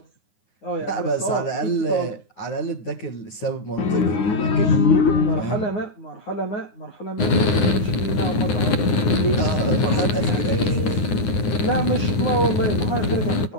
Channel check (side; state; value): right; late; 9.6 ms